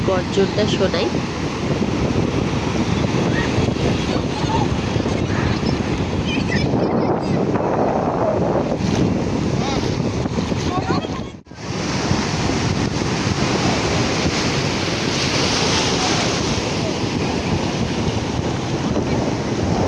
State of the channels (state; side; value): identical; both; correlation 1.00